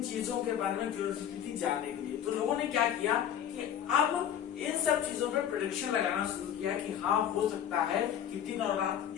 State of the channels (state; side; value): quieter; right; 9.8 dB